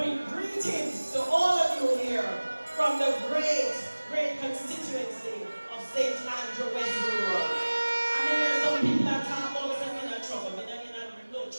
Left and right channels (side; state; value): both; inverted; correlation -1.00